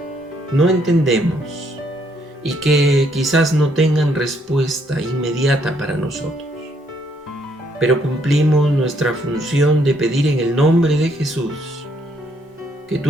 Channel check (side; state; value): both; normal; correlation 0.70